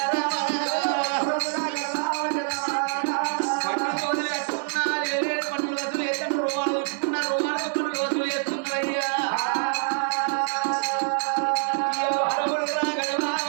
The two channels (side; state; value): left; silent; digital silence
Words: పన్ను తోలు కట్టుకున్నా లేని పన్నులు వసూలు చేస్తాను, రుమాలు చుట్టుకున్నా రుమాలకు పన్నులు వసూలు చేస్తున్నారయ్యా. అరవులు రాగడమా